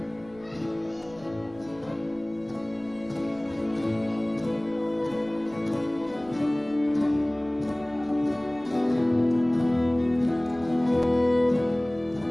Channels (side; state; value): right; noise; rumble, 25 dB below the sound